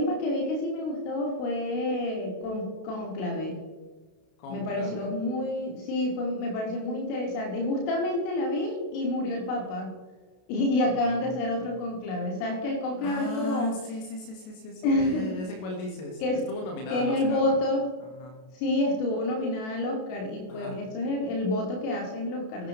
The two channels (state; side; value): late; right; 32 ms